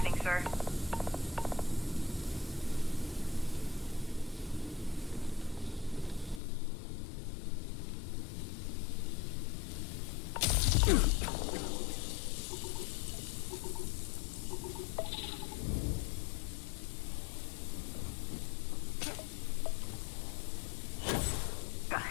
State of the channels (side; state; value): right; drops out; at 6.4 s